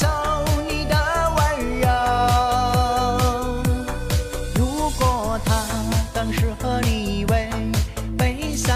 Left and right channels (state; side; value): identical; both; correlation 1.00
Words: 你的温柔。如果他更适合你为悲